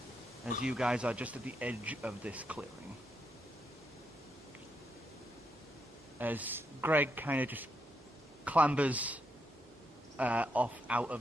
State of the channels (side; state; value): both; normal; correlation 0.80